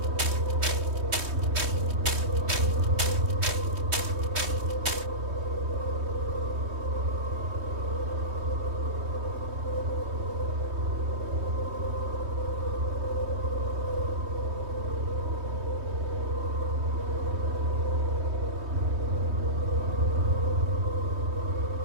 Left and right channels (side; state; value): left; late; 3.2 ms